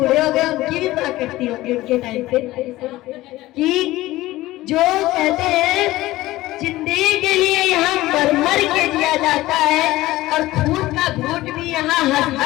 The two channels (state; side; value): quieter; right; 17.3 dB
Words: हो गए उनकी भी माँ करती होगी उनके टाइम पे, कि जो कहते हैं जिंदगी के लिए यहाँ मर के दिया जाता है, और खून का घूट भी यहाँ हंस